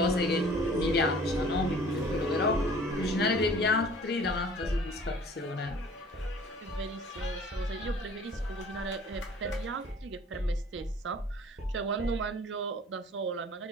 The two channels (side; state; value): both; normal; correlation 0.49